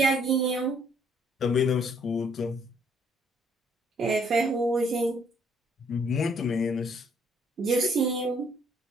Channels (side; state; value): both; normal; correlation 0.65